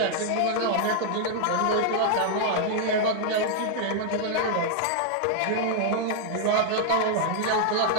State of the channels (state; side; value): different; both; correlation 0.00